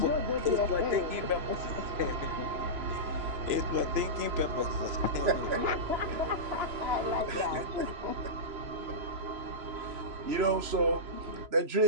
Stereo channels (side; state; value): left; late; 3.0 ms